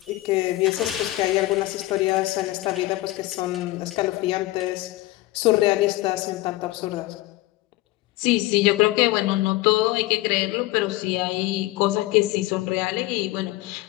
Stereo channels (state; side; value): quieter; right; 18.4 dB